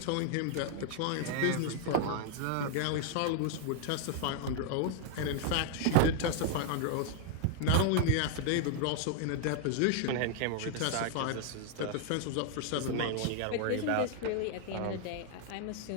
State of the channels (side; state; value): both; different; correlation 0.00